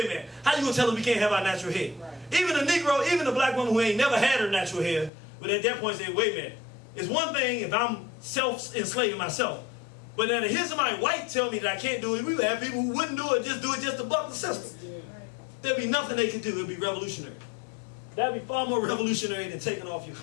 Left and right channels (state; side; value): drops out; right; at 5.1 s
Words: a minute, how you going to tell us we can't have our natural hair? Right. Even a Negro, even a black woman who ain't never had her natural hair, but at that point say, wait a minute, it's one thing if I'm self-enslaving myself, but then to hear somebody white tell me that I can't do it, we would have people who wouldn't do it just to buck the system. Yeah. There'd be nothing they could do. It'd be revolutionary. That'd be far more revolutionary than taking off your